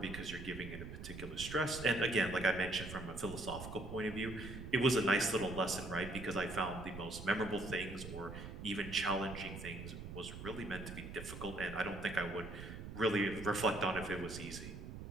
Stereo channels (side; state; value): right; noise; rumble, 10 dB below the sound